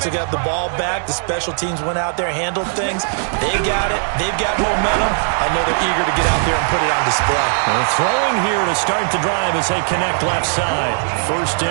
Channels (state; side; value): silent; left; 67 dB below the other